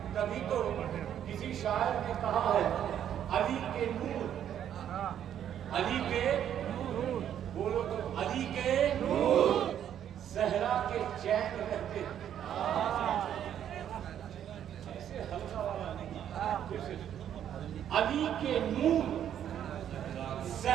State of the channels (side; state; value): left; quieter; 10.0 dB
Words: کبھی تو کسی شاعر نے کہا ہے علی کے نور، علی کے نور، بولو تو علی کے نور، زہرا کے چین رہتے ہیں۔ ایسے ہلکا والا نہیں، علی کے نور